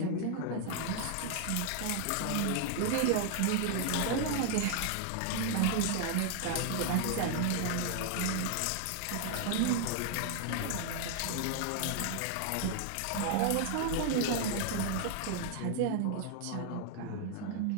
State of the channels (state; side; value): different; both; correlation 0.00